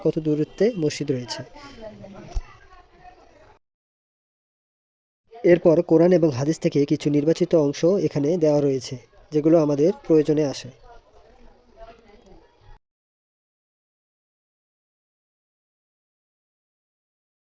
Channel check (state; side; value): identical; both; correlation 1.00